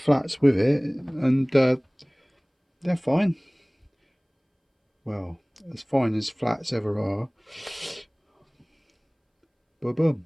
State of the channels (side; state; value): both; identical; correlation 1.00